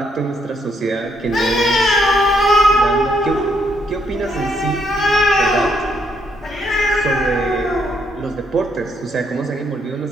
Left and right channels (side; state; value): both; normal; correlation 0.73